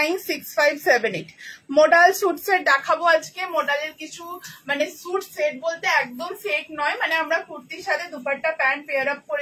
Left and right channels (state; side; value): identical; both; correlation 1.00